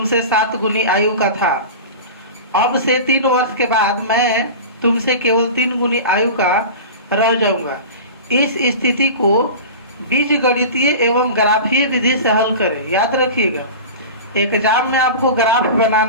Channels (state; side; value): inverted; both; correlation -0.32